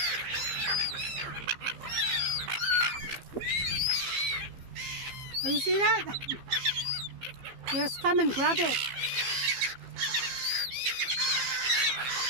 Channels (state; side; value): late; left; 15 ms